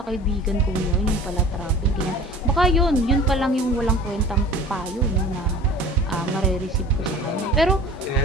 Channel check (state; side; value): normal; both; correlation 0.43